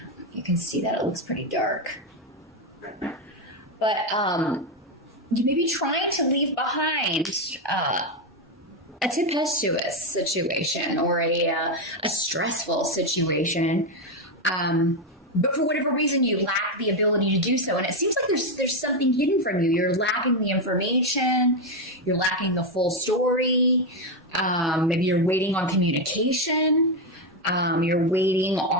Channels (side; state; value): both; normal; correlation 0.07